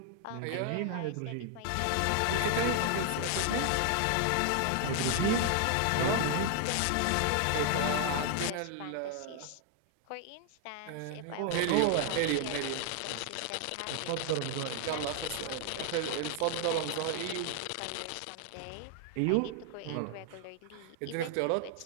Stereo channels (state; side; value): different; both; correlation 0.00